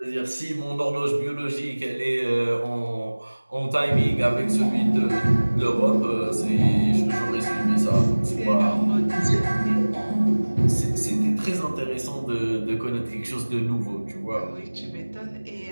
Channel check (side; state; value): both; inverted; correlation -1.00